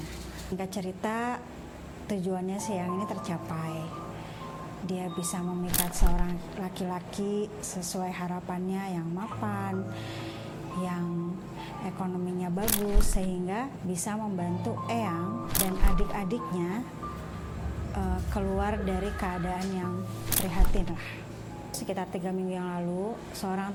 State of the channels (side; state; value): both; identical; correlation 1.00